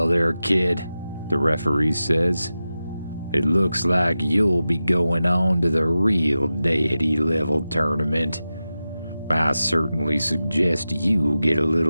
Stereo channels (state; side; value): inverted; both; correlation -0.93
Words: there, kid, the referee says. It looks like you'll be going on to the real deity level tournament. I certainly suggest you get a